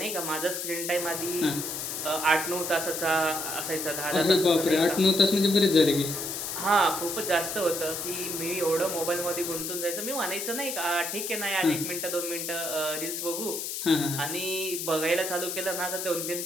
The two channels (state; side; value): noise; left; hiss, 4 dB below the sound